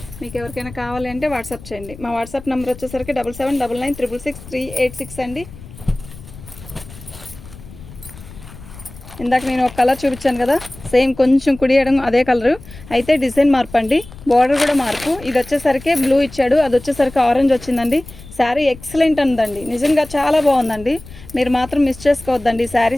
మీకు ఎవరికైనా కావాలి అంటే వాట్సాప్ చేయండి. మా వాట్సాప్ నెంబర్ వచ్చేసరికి 7799666386 అండి. ఇందాక నేను ఒక కలర్ చూపించాను కదా, సేమ్ కొంచెం కుడియడం అదే కలరు, అయితే డిజైన్ మార్పు అండి. బార్డర్ కూడా మార్పు. ఇది వచ్చేసరికి బ్లూ ఇచ్చాడు, అది వచ్చేసరికి ఆరెంజ్ వచ్చిందండి. శారీ ఎక్సలెంట్ ఉందండి. నిజంగా చాలా బాగుందండి. మీరు మాత్రం మిస్ చేసుకోవద్దండి.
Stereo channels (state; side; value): noise; left; rumble, 17 dB below the sound